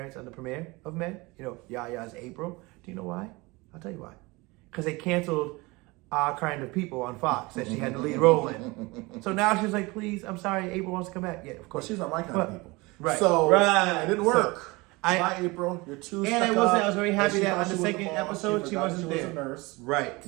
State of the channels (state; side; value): quieter; left; 24.1 dB